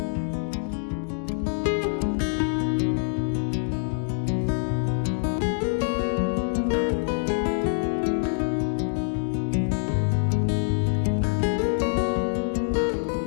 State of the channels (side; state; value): right; silent; digital silence